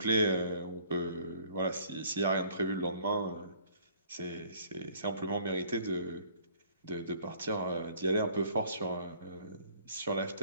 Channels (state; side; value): inverted; both; correlation -0.56